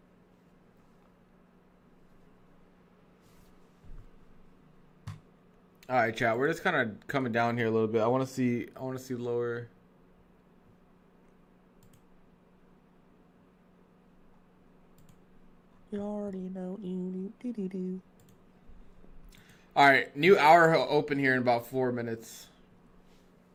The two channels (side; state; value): both; identical; correlation 1.00